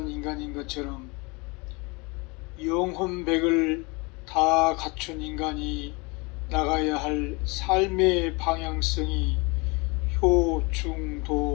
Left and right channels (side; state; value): right; quieter; 27.9 dB